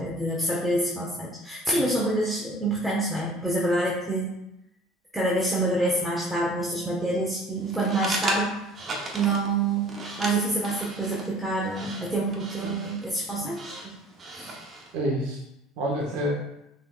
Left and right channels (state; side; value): normal; both; correlation 0.50